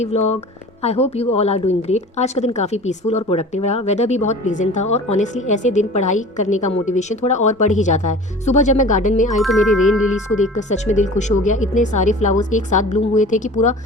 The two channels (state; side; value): normal; both; correlation 0.40